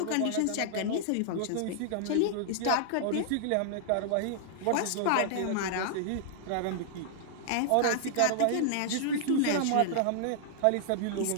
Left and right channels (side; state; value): both; different; correlation -0.01